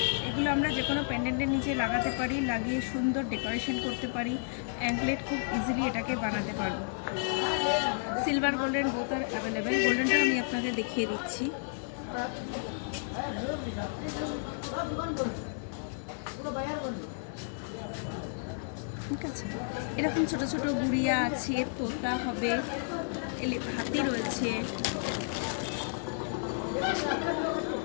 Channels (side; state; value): right; silent; digital silence